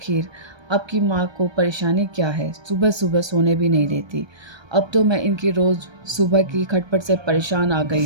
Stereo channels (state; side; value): late; left; 1.3 ms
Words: आपकी माँ को परेशानी क्या है? सुबह सुबह सोने भी नहीं देती। अब तो मैं इनकी रोज सुबह की खटपट से परेशान आ